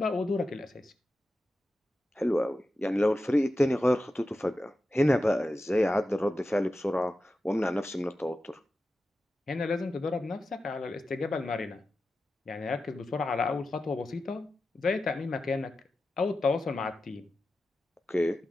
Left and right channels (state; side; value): normal; both; correlation 0.92